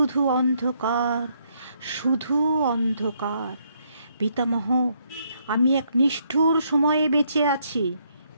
অন্ধকার, শুধু অন্ধকার। পিতামহ, আমি এক নিষ্ঠুর সময়ে বেঁচে আছি।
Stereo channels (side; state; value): both; inverted; correlation -0.72